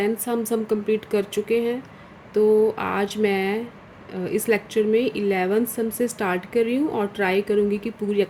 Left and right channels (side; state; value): both; identical; correlation 1.00